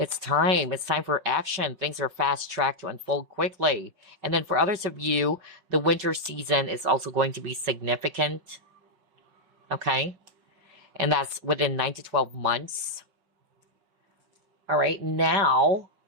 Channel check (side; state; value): left; late; 5.4 ms